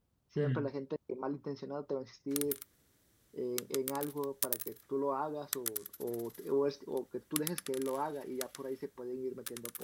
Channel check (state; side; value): identical; both; correlation 1.00